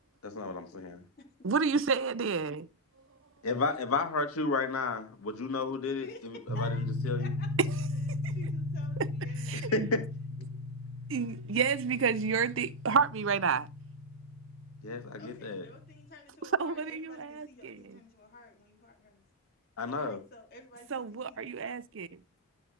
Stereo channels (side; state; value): both; normal; correlation -0.02